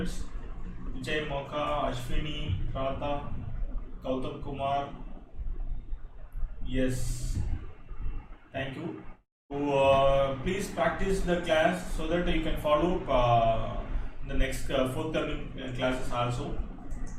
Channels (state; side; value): identical; both; correlation 1.00